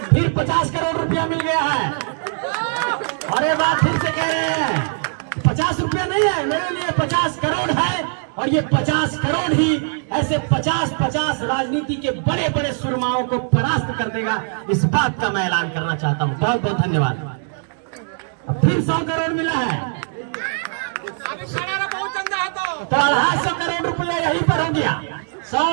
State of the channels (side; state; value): left; silent; 65 dB below the other